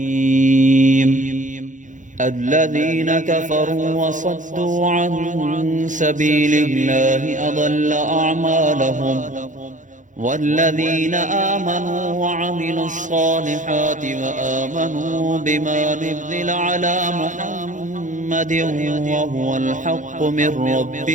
الذين كفروا وصدوا عن سبيل الله أضل أعمالهم، والذين آمنوا وعملوا الصالحات وآمنوا بما نزل على محمد وهو الحق من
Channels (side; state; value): left; late; 0.37 ms